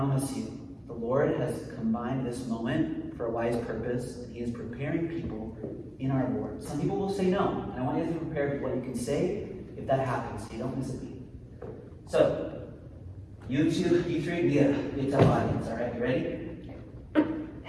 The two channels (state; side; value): identical; both; correlation 1.00